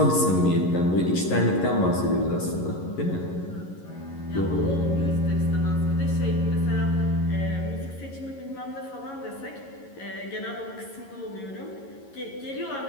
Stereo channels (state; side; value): late; right; 11 ms